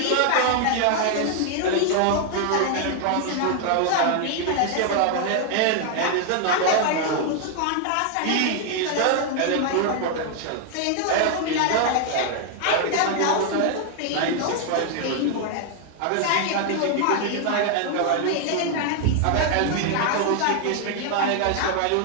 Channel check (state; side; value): different; both; correlation 0.00